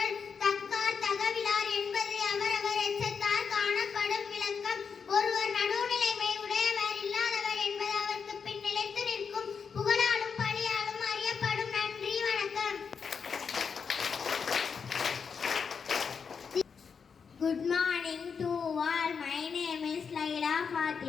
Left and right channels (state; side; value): quieter; right; 6.1 dB